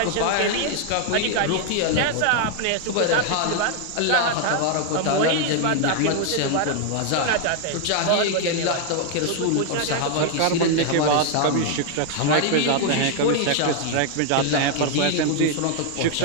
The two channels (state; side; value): different; both; correlation 0.00